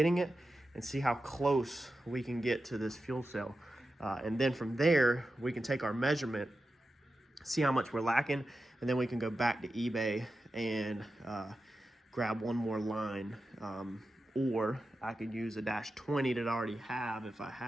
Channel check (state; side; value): normal; both; correlation 0.91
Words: it and see how close we can get to this fuel cell. And then from there, we can take our measurement, see how much we're lacking, and then we can go back to eBay and grab one more line. Or I could use a dash 20 that I already have if I